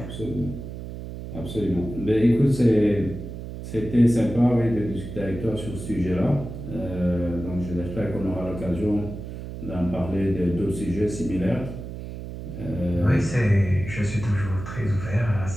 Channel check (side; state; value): right; noise; hum, 9 dB below the sound